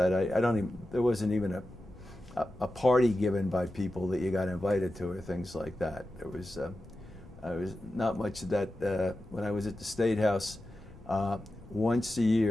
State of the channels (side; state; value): left; noise; rumble, 19 dB below the sound